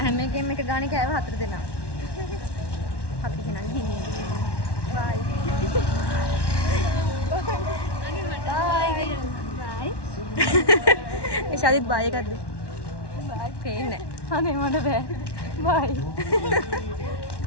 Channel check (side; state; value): right; late; 1.1 ms